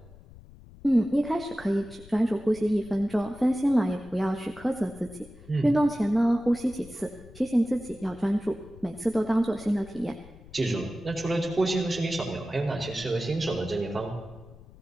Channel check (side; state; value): left; noise; rumble, 20 dB below the sound